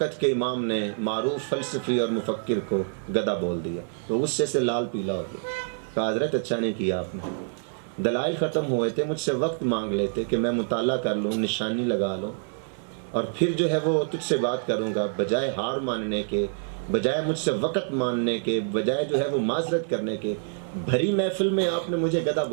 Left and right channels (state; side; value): silent; left; 58 dB below the other